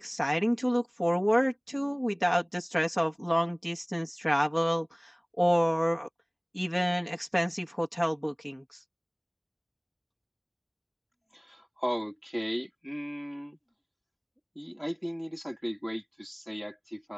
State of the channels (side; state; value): both; identical; correlation 1.00